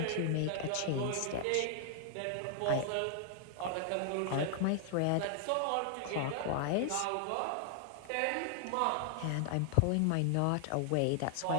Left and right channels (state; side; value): different; both; correlation 0.00